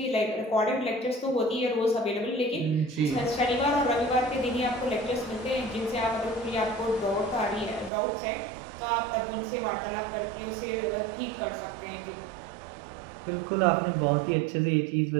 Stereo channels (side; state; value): left; drops out; at 7.9 s